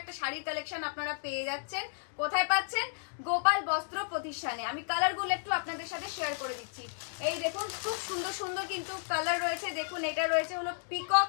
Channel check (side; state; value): right; silent; digital silence